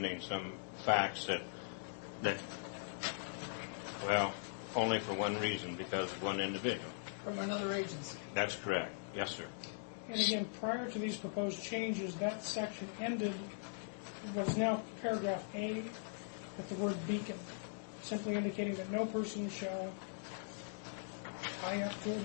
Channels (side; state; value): right; silent; digital silence